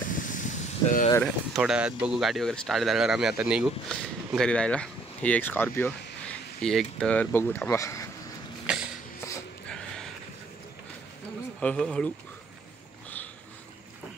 तर थोड्या वेळात बघू गाडी वगैरे स्टार्ट झाल्यावर आम्ही आता निघू घरी जायला ही एक स्कॉर्पिओ ही एक तर बघू थांबा हळू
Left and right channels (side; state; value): left; quieter; 3.0 dB